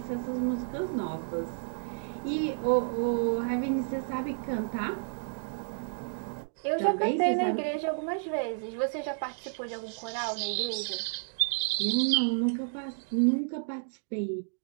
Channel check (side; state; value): left; silent; digital silence